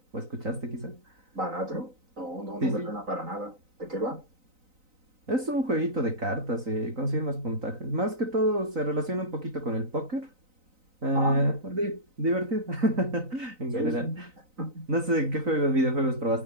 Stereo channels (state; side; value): late; left; 3.9 ms